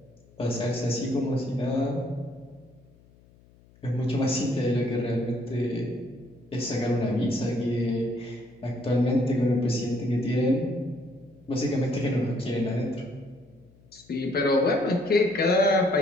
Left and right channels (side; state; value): left; noise; hum, 28 dB below the sound